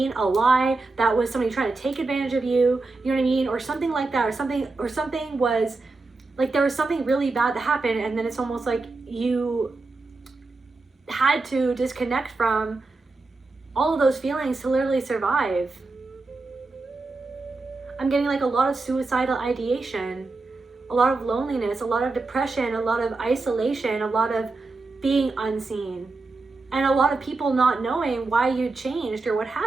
A lie. That was somebody trying to take advantage of you. You know what I mean? Or something like that. Or something was like, there was something really bad that happened. And then it's almost like you had to disconnect from all of those feelings to literally survive. I'm getting like a lot of suicidal ideation, a lot of loneliness, a lot of depression, a lot of isolation, a lot of being unseen, and a lot of people not knowing why you changed or what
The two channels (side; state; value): left; quieter; 3.6 dB